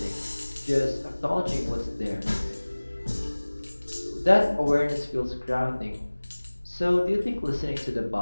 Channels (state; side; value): inverted; both; correlation -1.00